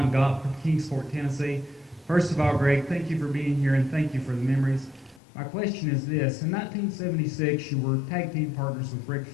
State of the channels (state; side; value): drops out; right; at 5.2 s